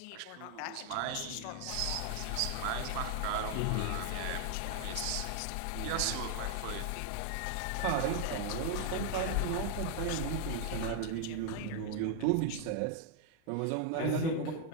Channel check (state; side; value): different; both; correlation 0.00